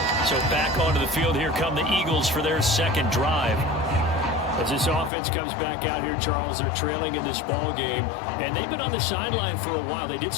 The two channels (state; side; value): drops out; right; at 5.1 s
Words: So back onto the field, here come the Eagles for their second drive. As this offense comes back out here, Charles, they're trailing in this ball game, and they've been on the sideline for a while. They did